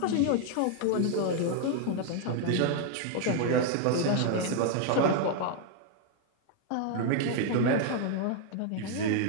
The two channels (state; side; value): different; both; correlation 0.00